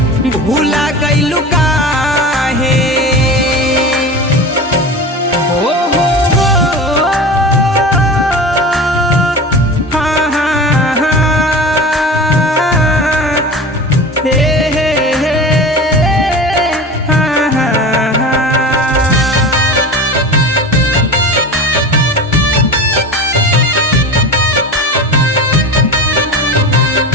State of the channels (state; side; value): normal; both; correlation 0.32